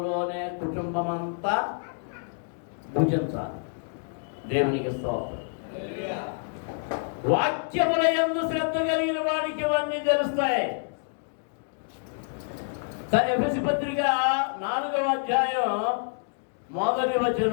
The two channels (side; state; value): right; silent; digital silence